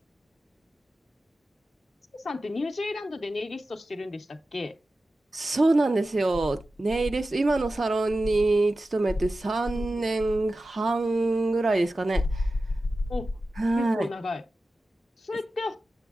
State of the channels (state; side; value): normal; both; correlation 0.94